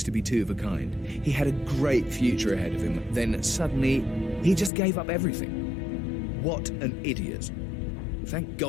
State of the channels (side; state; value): right; drops out; at 4.7 s